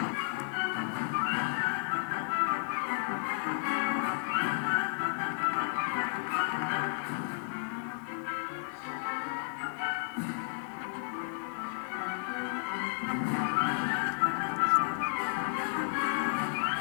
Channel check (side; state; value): right; silent; digital silence